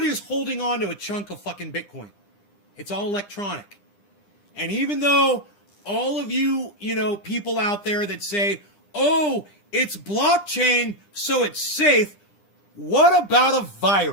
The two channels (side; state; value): right; late; 9.9 ms